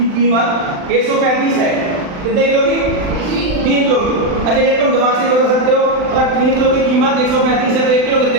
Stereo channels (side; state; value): left; late; 39 ms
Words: कीमत 135 है, कितने किलो की 3 किलो की। अच्छा ये तुम दिमाग से बता सकते हो, अगर 3 किलो की कीमत 135 है तो 1 किलो